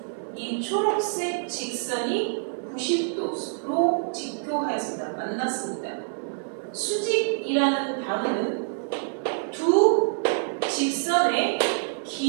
이 초록색 직선이 90도로 직교하였습니다. 만났습니다. 수직이라는 단어는 두 직선의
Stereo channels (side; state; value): left; silent; digital silence